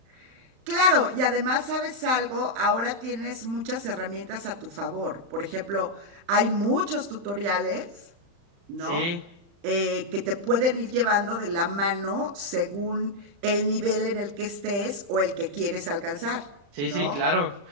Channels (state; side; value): late; left; 35 ms